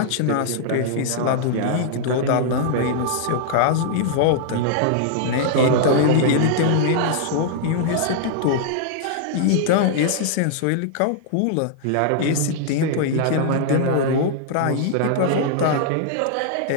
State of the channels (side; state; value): both; different; correlation -0.01